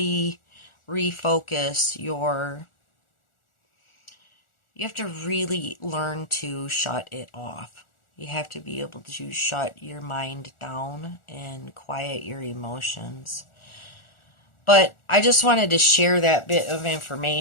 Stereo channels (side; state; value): right; late; 1.4 ms